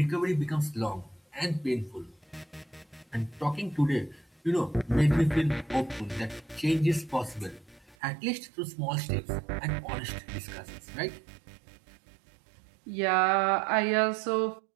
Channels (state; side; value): drops out; left; at 8.0 s